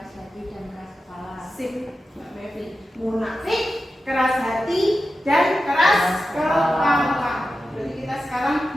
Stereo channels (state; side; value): normal; both; correlation 0.92